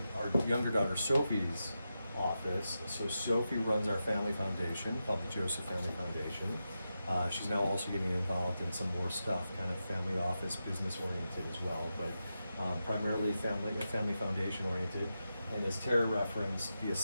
our younger daughter Sophie's office. So Sophie runs our family foundation called the Joseph Family Foundation. She's now also getting involved in some more stuff, kind of family office, business oriented as well, but primarily family foundation oriented. And as Tara referenced, the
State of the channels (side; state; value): both; inverted; correlation -0.89